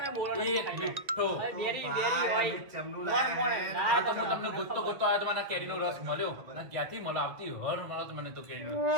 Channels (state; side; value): late; left; 1.9 ms